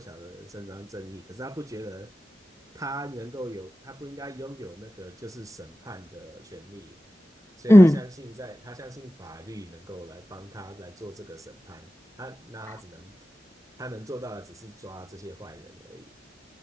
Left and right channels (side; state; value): both; normal; correlation 0.95